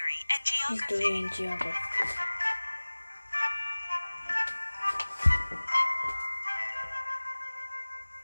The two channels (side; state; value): both; inverted; correlation -1.00